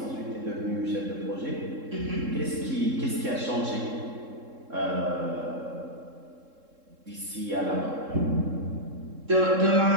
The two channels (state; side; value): late; left; 3.7 ms